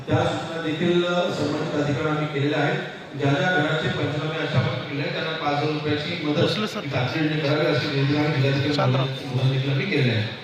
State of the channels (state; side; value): identical; both; correlation 1.00